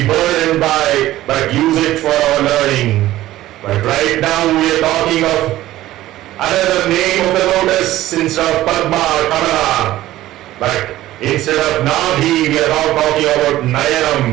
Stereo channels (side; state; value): left; quieter; 15.2 dB